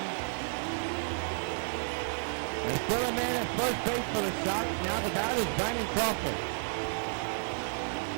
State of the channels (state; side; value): silent; left; 57 dB below the other